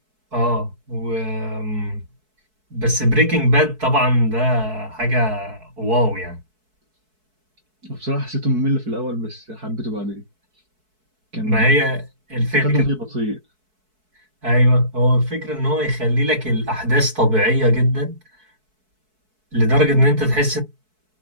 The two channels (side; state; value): left; late; 4.6 ms